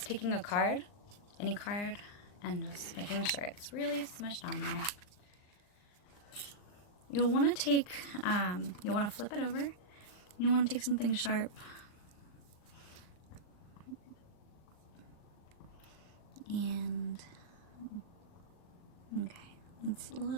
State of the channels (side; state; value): right; late; 39 ms